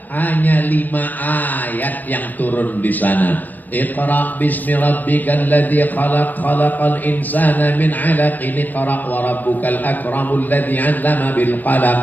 Hanya 5 ayat yang turun di sana. Iqra bismi rabbikal ladzi khalaq, khalaqal insana min 'alaqin, iqra wa rabbukal akramul ladzi 'allama bil qalam,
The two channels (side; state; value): right; late; 0.087 ms